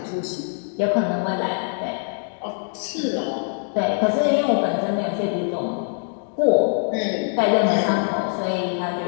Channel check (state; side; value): silent; right; 63 dB below the other